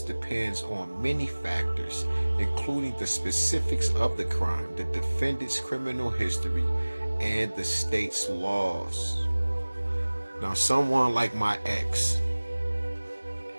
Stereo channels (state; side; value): inverted; both; correlation -1.00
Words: on many factors, including the specifics of the crime, the defendant's criminal history, and the state's laws. Now, someone like my ex,